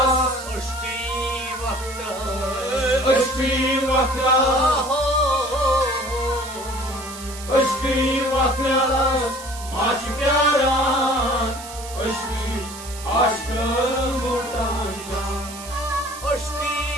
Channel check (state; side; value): noise; right; hiss, 14 dB below the sound